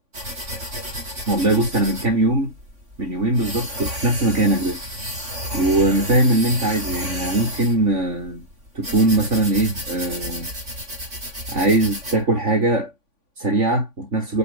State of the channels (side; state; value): left; late; 3.5 ms